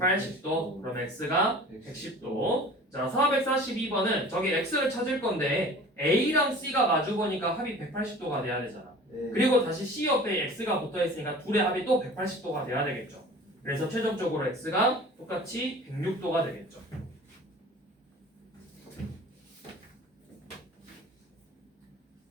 그럼 x가 110도. 자, 442번은 저기 x를 찾을 건데 a랑 c가 마주보니까 합이 180도가 돼야 되잖아. 그리고 다시 c 옆에 x가 붙어있으니까 둘의 합이 또 180도가 돼야 되겠죠. 그래서 최종적으로 x가 똑같이 106도가 되겠죠.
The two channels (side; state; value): both; normal; correlation 0.43